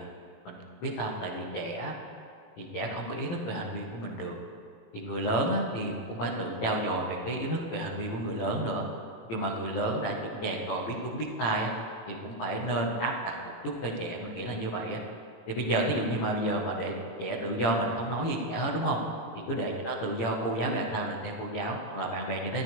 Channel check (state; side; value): late; right; 18 ms